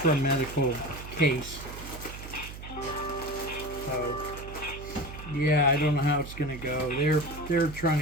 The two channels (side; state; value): right; noise; hum, 12 dB below the sound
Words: medical case. So, yeah, I don't know how it's gonna go. They're trying